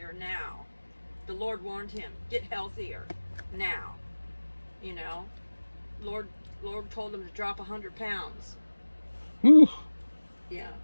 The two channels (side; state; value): both; inverted; correlation -1.00